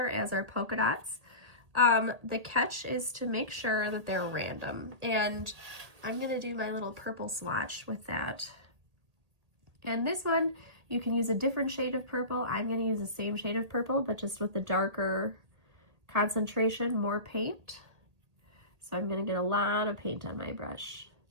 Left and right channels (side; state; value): left; late; 1.8 ms